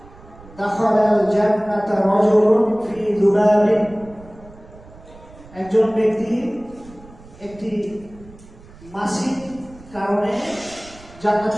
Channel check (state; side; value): noise; right; rumble, 21 dB below the sound